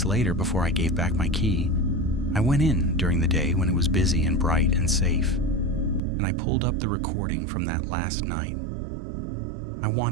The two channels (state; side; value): drops out; left; at 6.0 s